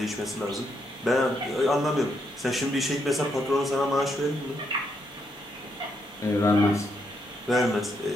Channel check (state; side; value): normal; both; correlation 0.77